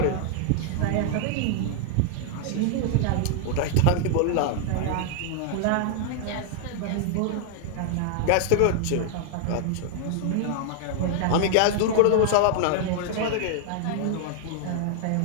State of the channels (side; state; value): both; different; correlation -0.01